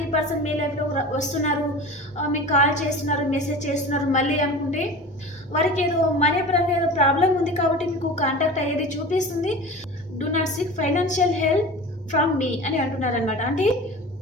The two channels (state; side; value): normal; both; correlation 0.35